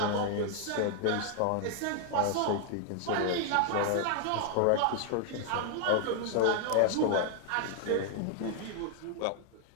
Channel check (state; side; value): different; both; correlation 0.00